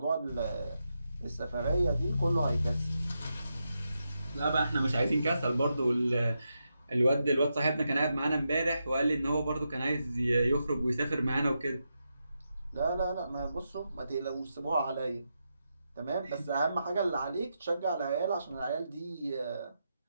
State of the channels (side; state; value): both; inverted; correlation -0.86